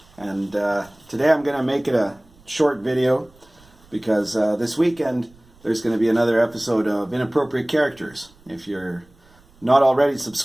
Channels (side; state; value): right; noise; rumble, 29 dB below the sound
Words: And today I'm going to make it a short video because this weekend there's going to be another episode of Inappropriate Characters. If you're not already